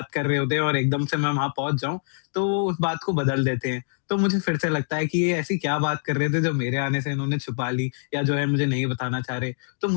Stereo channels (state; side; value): silent; right; digital silence